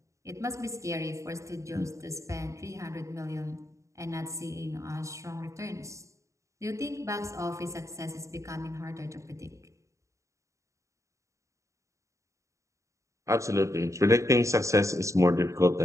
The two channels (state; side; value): late; left; 0.15 ms